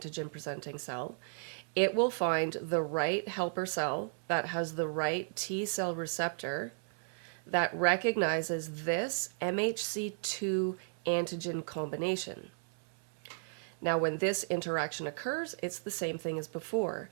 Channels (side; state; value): left; silent; 55 dB below the other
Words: cell. It will find the right helper cell that has the right T cell receptor that recognizes this MHC2 antigen combination. Now, when this interaction occurs, it's the same thing as before.